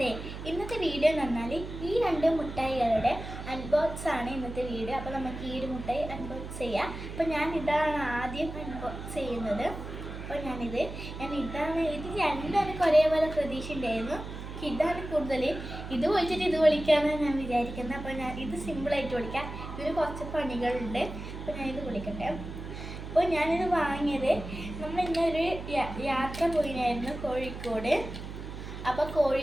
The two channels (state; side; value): noise; right; hum, 9 dB below the sound